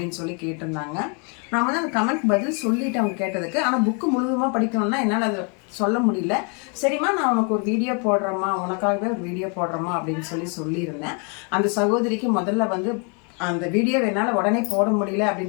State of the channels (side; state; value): right; quieter; 36.6 dB